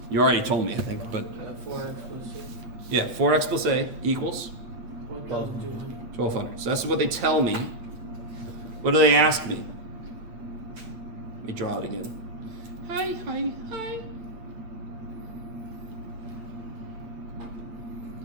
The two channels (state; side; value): late; left; 8.9 ms